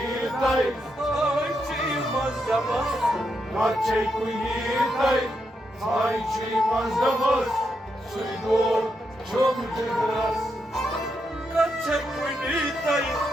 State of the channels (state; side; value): normal; both; correlation 0.82